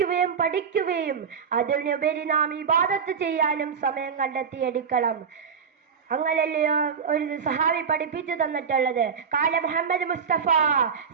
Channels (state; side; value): quieter; left; 6.5 dB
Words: പഠിക്കുകയും അതിനുപരി നാം ഇബാദത്ത് ചെയ്യാനും സമയം കണ്ടെത്തിയെടുക്കണം. അങ്ങനല്ലയോ ഒരു സഹാബി പഠിപ്പിച്ചു തന്നിട്ടുള്ളത്. കാല മുഹമ്മദ് മുസ്തഫ